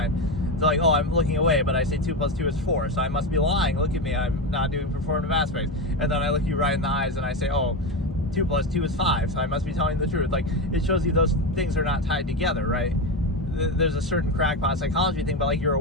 It's like, oh, I'm looking away, but I say 2 + 2 is 4, so I must be lying. Look at me, I'm not doing performative aspects. And then I look you right in the eyes and I say, oh, 2 + 2 is 5, so I must be telling the truth. Like, it shows you those things are not tied together, right? there's a certain crackpot psychology thing, but like you're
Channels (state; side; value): normal; both; correlation 0.16